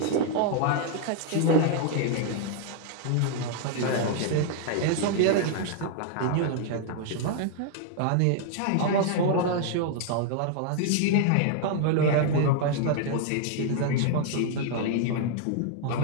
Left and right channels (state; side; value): different; both; correlation 0.00